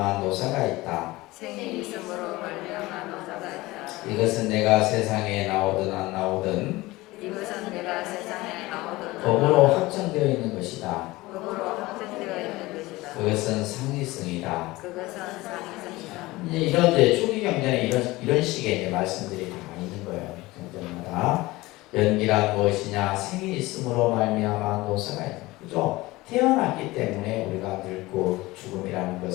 노사가 있다. 생이 있음으로 말미암아 노사가 있다. 이것은 내가 세상에 나오든 안 나오든 이것은 내가 세상에 나오든 법으로 확정되어 있는 것이다. 법으로 확정되어 있는 것이다. 그것은 상리성이다. 그것은 상이성이다. 이제 이런 이제 초기 경전에 이런 식의 이제 말씀들이 다 있는 거예요. 경전마다 연기란 무엇이냐? 생이 있음으로 말미암아 노사가 있다. 그죠? 태어났기 때문에 우리가 늙고 죽음이라는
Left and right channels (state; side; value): quieter; right; 20.0 dB